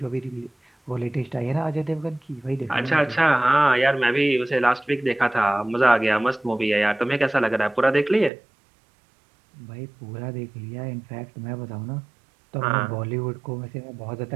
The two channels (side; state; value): left; drops out; at 8.3 s